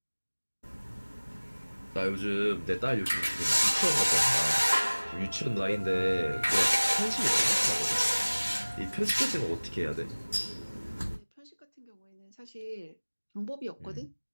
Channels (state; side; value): inverted; both; correlation -1.00